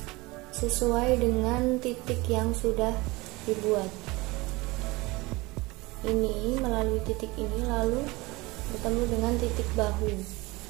sesuai dengan titik yang sudah dibuat. Ini melalui titik ini lalu bertemu dengan titik bahu.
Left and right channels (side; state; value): left; quieter; 23.0 dB